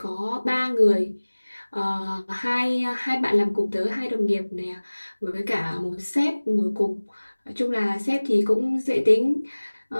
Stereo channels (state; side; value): inverted; both; correlation -1.00